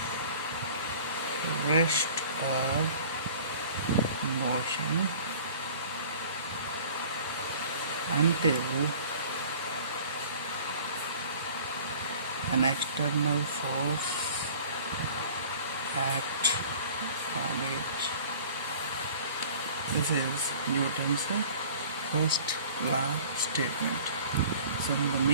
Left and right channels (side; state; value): both; inverted; correlation -0.47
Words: rest or motion until an external force acts on it. This is Newton's first law statement. So the